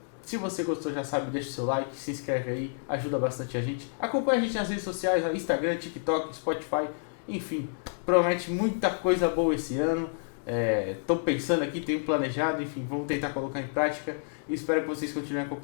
Se você gostou, já sabe, deixa o seu like, se inscreve aí, ajuda bastante a gente. Acompanha a gente nas redes sociais, Instagram, TikTok, Spotify, enfim, promete muita coisa boa esse ano. Estou pensando aqui, tenho planejado, enfim, vamos tentar colocar em prática. Espero que vocês continuem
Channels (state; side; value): silent; right; digital silence